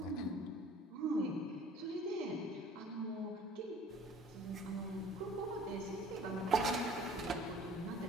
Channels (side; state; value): both; normal; correlation 0.49